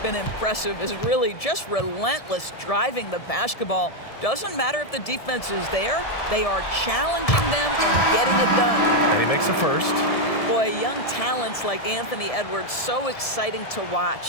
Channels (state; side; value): late; right; 1.7 ms